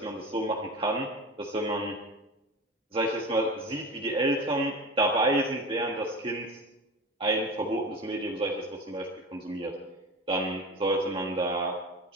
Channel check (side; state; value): both; normal; correlation 0.30